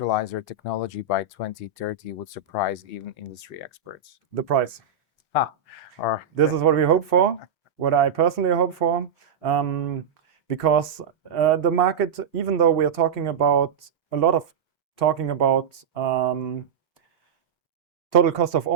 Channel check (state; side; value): quieter; left; 6.3 dB